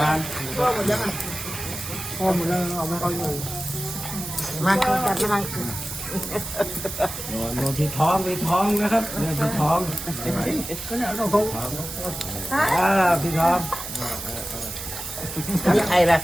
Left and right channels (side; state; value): right; noise; hiss, 8 dB below the sound